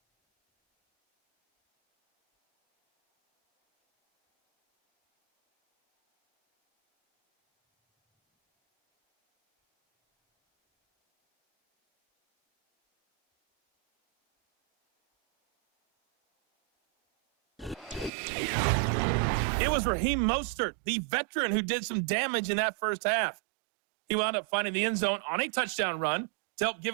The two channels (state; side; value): drops out; left; at 18.1 s